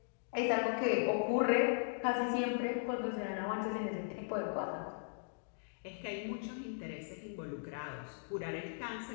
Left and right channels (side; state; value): right; silent; digital silence